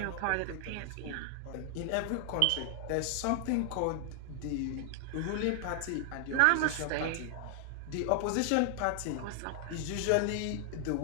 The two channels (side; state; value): both; different; correlation 0.00